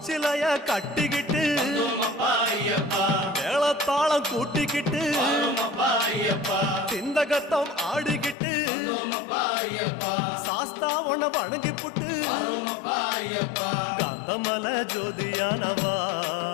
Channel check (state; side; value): drops out; right; at 8.3 s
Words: கட்டிக்கிட்டு ஐயப்பா மேளத்தாளம் கூட்டிக்கிட்டு ஐயப்பா சிந்தகத்தம் ஆடிக்கிட்டு ஐயப்பா சாஸ்தாவன வணங்கி புட்டு ஐயப்பா காந்தமல ஜோதியானவா